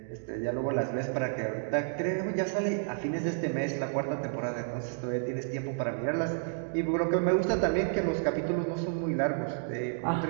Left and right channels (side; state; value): left; silent; digital silence